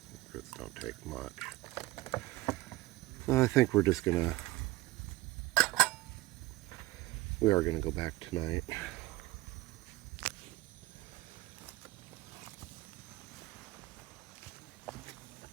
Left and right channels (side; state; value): left; quieter; 18.7 dB